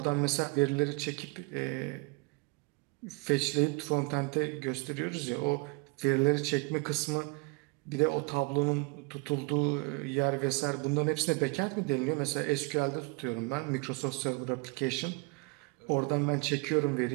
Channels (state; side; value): quieter; left; 29.6 dB